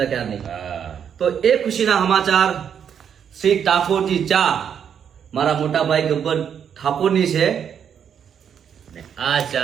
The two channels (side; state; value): left; quieter; 8.1 dB